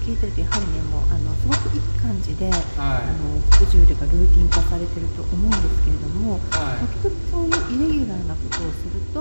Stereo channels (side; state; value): both; inverted; correlation -1.00